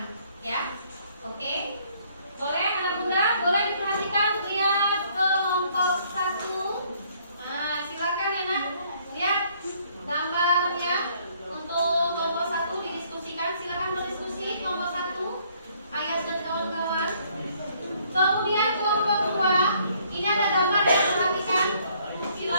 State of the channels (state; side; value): inverted; both; correlation -0.64